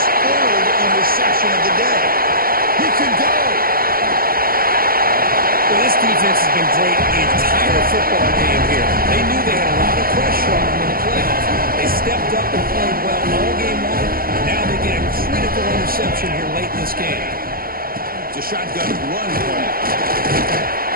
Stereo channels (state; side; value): late; left; 0.42 ms